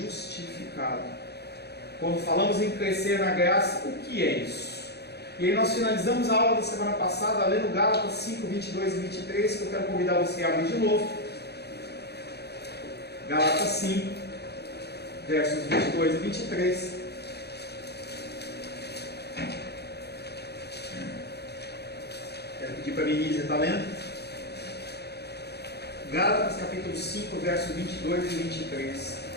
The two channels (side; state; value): right; late; 0.48 ms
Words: Quando falamos em crescer na graça, o que é isso? E aí nós finalizamos a aula da semana passada, lendo Gálatas 5, 22 e 23, que eu quero convidar você a abrir de novo. Gálatas 5, versos 22 e 23. Quero pedir para a Denise estar lendo. Gálatas capítulo 5, versos 22 e 23.